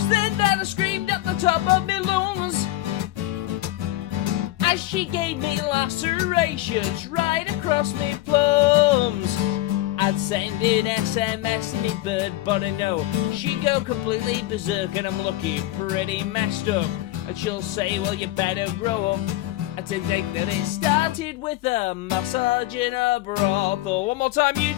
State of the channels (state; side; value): quieter; right; 16.0 dB